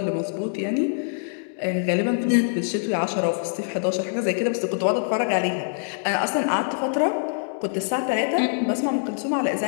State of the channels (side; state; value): right; silent; digital silence